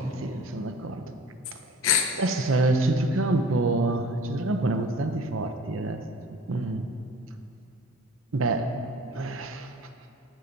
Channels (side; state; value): both; normal; correlation 0.44